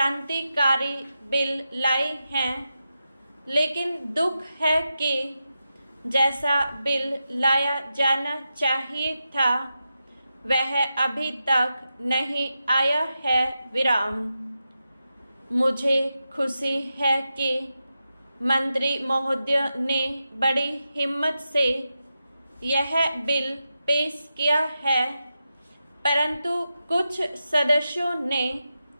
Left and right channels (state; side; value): inverted; both; correlation -0.89